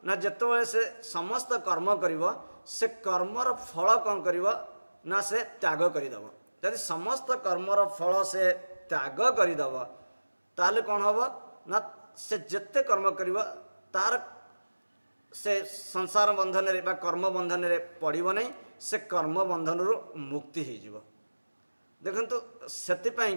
ना जिते से समस्त कर्म कर से कर्मर फल कौन कर ना से त्याग करदेव। यदि समस्त कर्मर फल से त्याग करदेव ताले कौन हम ना से जिते कर्म कर तार से संसार बंधन रे बा कर्म बंधन रे पड़ो नहीं से कर्म बंधन रु मुक्ति हो। देखंतु सेतिपाई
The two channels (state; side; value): inverted; both; correlation -1.00